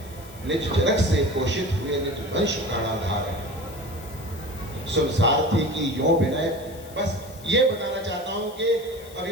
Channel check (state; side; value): noise; left; hiss, 21 dB below the sound